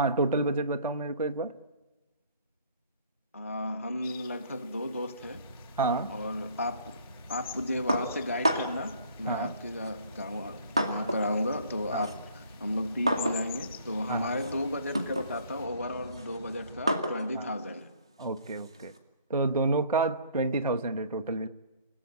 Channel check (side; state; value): both; inverted; correlation -0.57